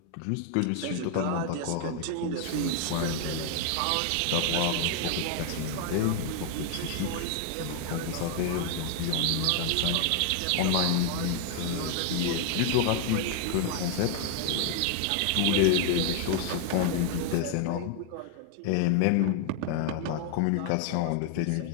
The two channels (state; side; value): different; both; correlation 0.00